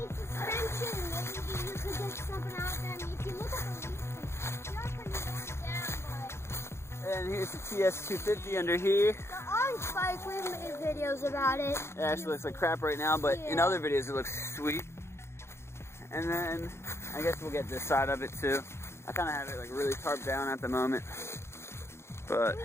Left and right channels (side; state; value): right; late; 0.13 ms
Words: suspension, maybe you could get something out there. I mean, if you look at the leases, you're pretty worn down, but... And here's the TS250 under here. The orange bike, we've made videos about it. It actually looks like crap right now, but in other videos it looks sweet. And then, I guess we'll get this side of it too. I kind of have it like really tarped down at the moment. But we